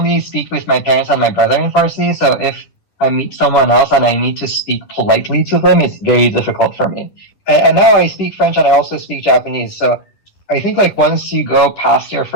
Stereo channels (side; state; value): right; late; 11 ms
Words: speak with my parents and my brother in Farsi, so if I meet someone else and I need to speak politely to them, it's very difficult for me. And now I speak French and I also speak Japanese. So I think like once you go past your